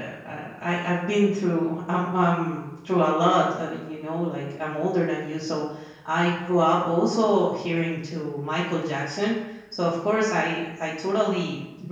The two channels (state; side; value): identical; both; correlation 1.00